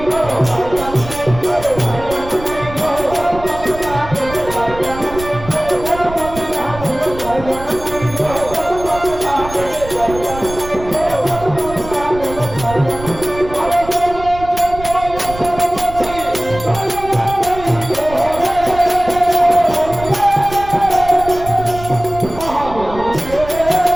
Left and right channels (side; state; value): right; noise; rumble, 13 dB below the sound